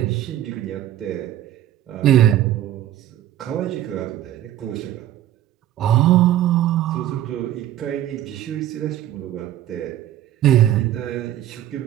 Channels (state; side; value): quieter; left; 12.5 dB